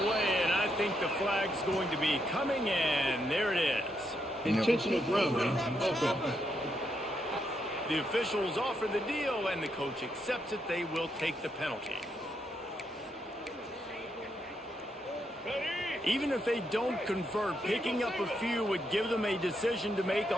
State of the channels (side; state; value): both; normal; correlation 0.79